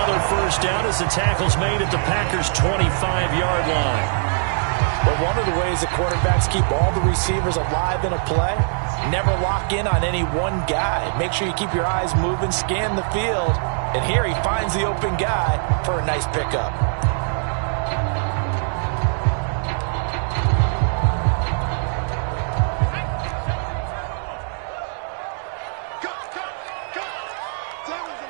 first down as the tackle's made at the Packers' 25-yard line. But one of the ways the quarterbacks keep all the receivers alive in a play, never lock in on any one guy. Make sure you keep your eyes moving, scan the field. And here he finds the open guy for a nice pickup.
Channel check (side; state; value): left; silent; digital silence